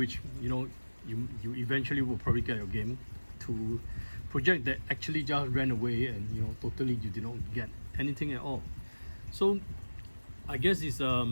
you eventually will probably get your game, to project that actually just ran away and totally you did not get anything at all. So I guess it's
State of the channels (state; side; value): inverted; both; correlation -1.00